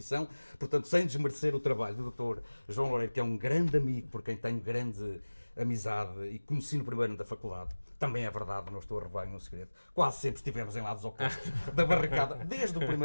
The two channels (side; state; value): both; inverted; correlation -1.00